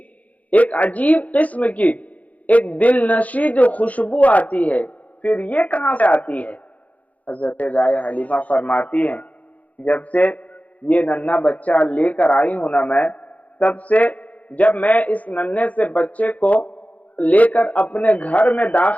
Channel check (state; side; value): late; right; 0.071 ms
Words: ایک عجیب قسم کی ایک دل نشی جو خوشبو آتی ہے، پھر یہ کہاں سے آتی ہے؟ حضرت دائی حلیمہ فرماتی ہیں جب سے یہ ننھا بچہ لے کر آئی ہوں نا میں، تب سے جب میں اس ننھے سے بچے کو لے کر اپنے گھر میں